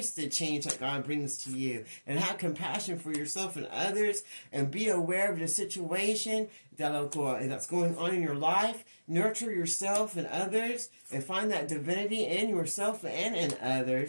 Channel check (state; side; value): inverted; both; correlation -1.00